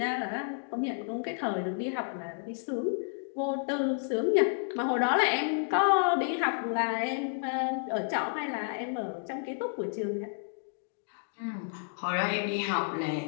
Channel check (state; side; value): silent; right; digital silence